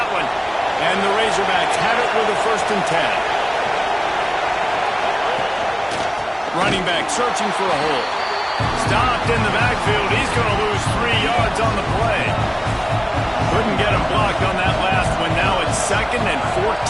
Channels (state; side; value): identical; both; correlation 1.00